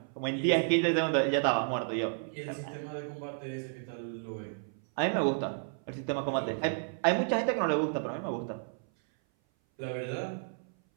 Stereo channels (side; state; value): left; silent; 56 dB below the other